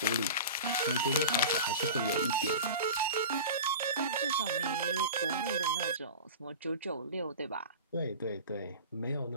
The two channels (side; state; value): both; inverted; correlation -0.34